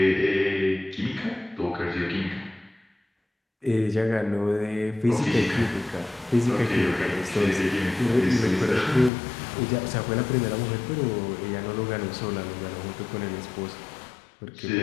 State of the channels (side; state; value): right; drops out; at 9.1 s